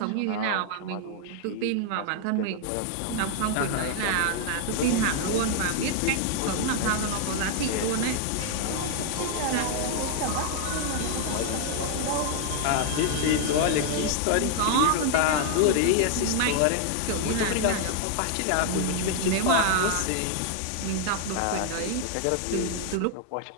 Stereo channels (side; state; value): both; different; correlation 0.00